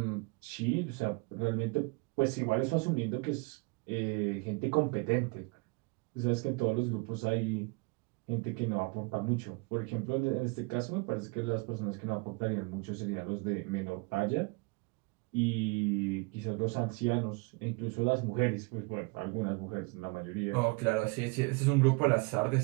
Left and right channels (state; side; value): quieter; left; 28.6 dB